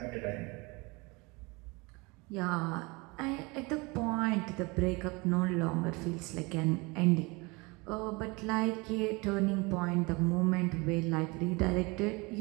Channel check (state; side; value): quieter; left; 26.6 dB